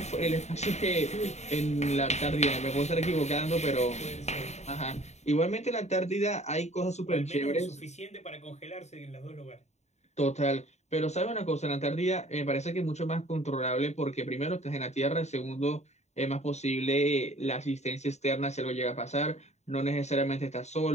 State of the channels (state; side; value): late; right; 0.32 ms